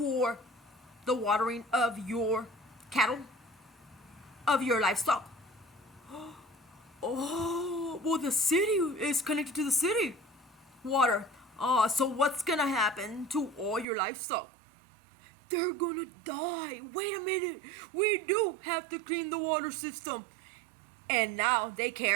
the watering of your cattle, of your livestock? Oh, well, the city is connected to the city water. So what's gonna happen to all your livestock? They're gonna die. Wait a minute. We do have to clean the water system. And now they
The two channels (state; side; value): drops out; left; at 13.9 s